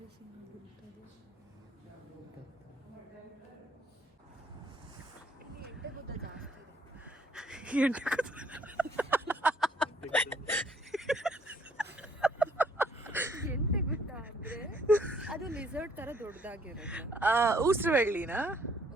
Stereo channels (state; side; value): normal; both; correlation 0.64